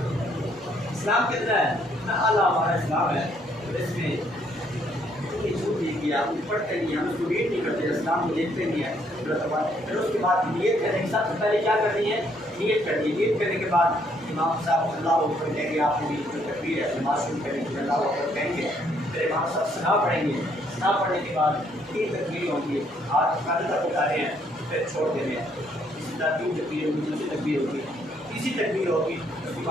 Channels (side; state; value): both; normal; correlation 0.69